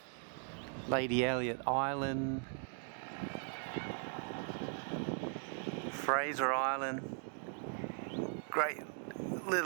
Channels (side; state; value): left; silent; 52 dB below the other